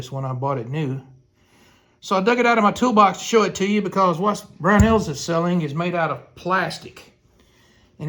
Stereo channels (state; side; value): identical; both; correlation 1.00